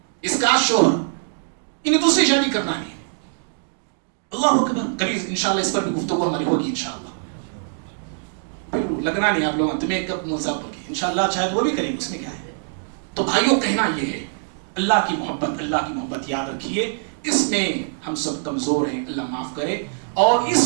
اس کا شوہر انہیں دوسری شادی کرنا ہے۔ اللہ اکبر۔ کبھی انشاءاللہ اس پر بھی گفتگو ہماری ہوگی انشاءاللہ۔ پھر لگنا نہیں آپ لوگوں تمہیں کب ملزم ہوگی، انشاءاللہ شاید وہ بھی کریں گے، اس میں کیا ہے۔ تو بھائیوں کہنا یہ ہے، اللہ کی محبت یاد رکھیے، اس میں ہم سب کمزور ہیں، اللہ معاف کرے۔ اور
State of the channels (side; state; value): left; silent; digital silence